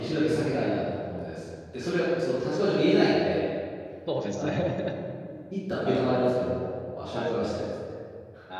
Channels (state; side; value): identical; both; correlation 1.00